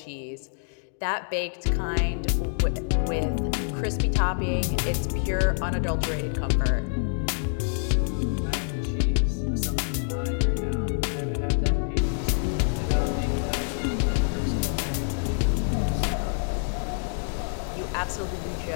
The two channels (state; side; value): silent; right; digital silence